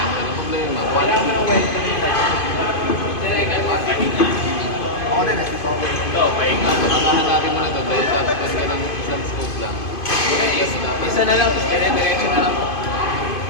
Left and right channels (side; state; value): right; late; 2.5 ms